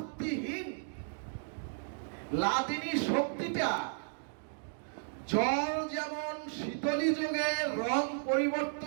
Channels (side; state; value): left; silent; digital silence